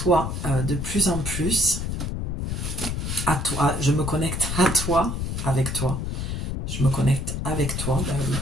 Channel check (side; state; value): left; noise; rumble, 3 dB below the sound